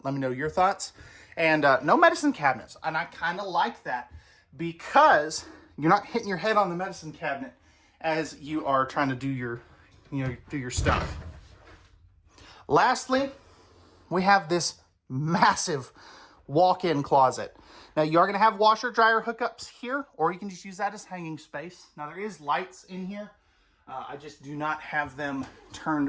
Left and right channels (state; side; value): identical; both; correlation 1.00